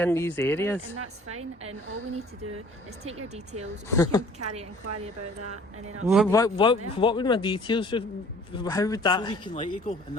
these areas. And that's fine, and all we need to do is take your details, we can carry an inquiry about that, and then What would my details? How would So we that? can let you go, and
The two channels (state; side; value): normal; both; correlation 0.51